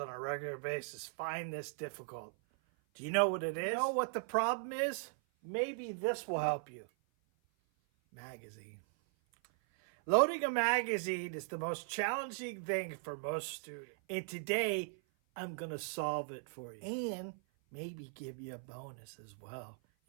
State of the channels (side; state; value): left; silent; 52 dB below the other